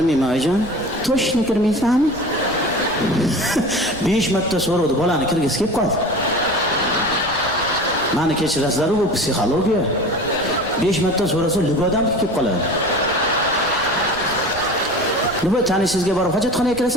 oyijon. To'shni kirmaysanmi? 5 marta so'radi, bolani kirgisi kelib qoldi. Mani kechirasizlar, bu psixologiya. 5 marta so'rasa libodan kelib qoladi. Nima tanishingizga borib hojatxonaga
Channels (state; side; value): noise; right; rumble, 16 dB below the sound